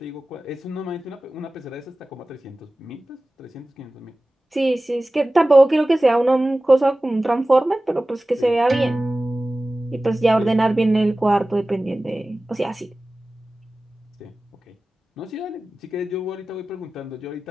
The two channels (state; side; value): normal; both; correlation 0.97